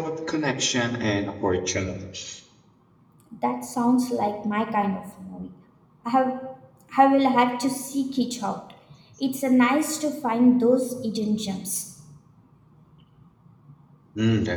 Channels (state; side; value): identical; both; correlation 1.00